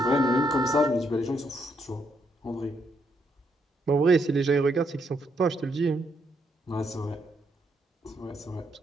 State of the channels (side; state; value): both; normal; correlation 0.76